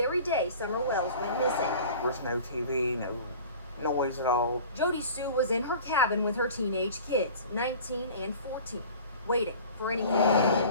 day Summer Wells went missing. There's no TV, no noise at all. Jodisue was in her cabin with her teenage kids, 19 and 14, waiting for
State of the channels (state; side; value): inverted; both; correlation -0.42